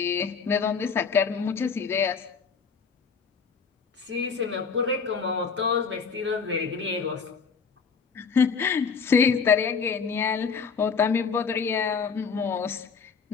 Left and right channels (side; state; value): right; quieter; 5.7 dB